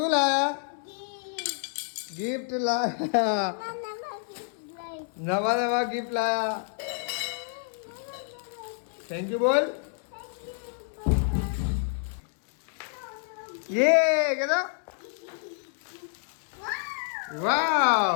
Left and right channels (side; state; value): right; silent; 59 dB below the other